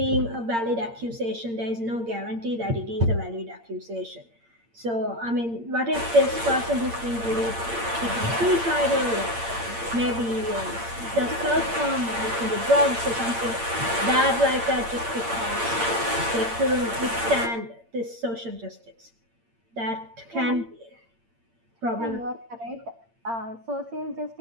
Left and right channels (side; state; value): left; late; 8.7 ms